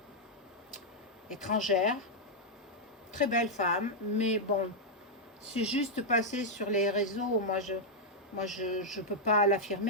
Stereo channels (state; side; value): normal; both; correlation -0.04